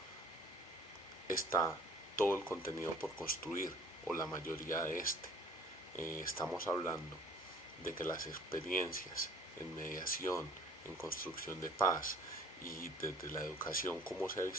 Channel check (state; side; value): normal; both; correlation 0.52